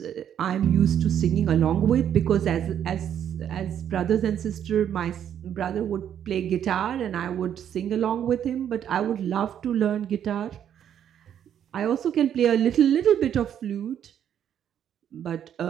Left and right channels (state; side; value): quieter; left; 9.5 dB